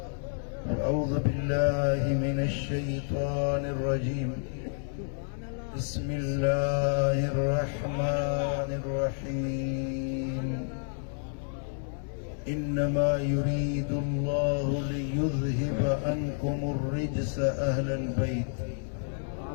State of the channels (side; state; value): right; silent; 58 dB below the other